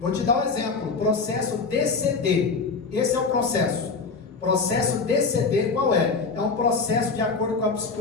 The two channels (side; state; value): right; quieter; 4.5 dB